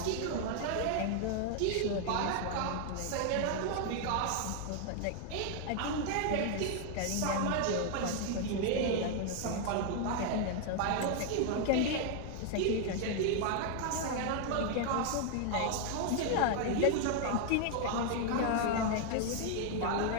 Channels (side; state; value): both; different; correlation 0.00